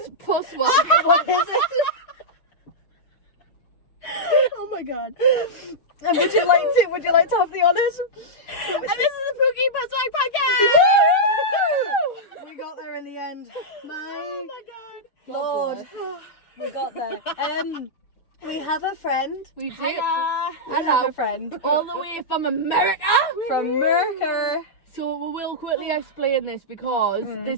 one. What is it? Oh my god. And would you like to have the honours? And this is the Pookie Postwag Podcast! We got there in the end. Oh my god. Lord, we got there. We have a friend. We do. We have a friend All the way from America. from Mercer. So we will quickly explain this because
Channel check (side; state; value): right; late; 6.8 ms